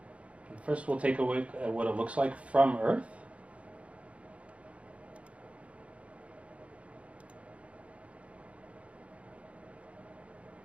And first we'll take a look at what it looks like from Earth.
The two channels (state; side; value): late; left; 0.063 ms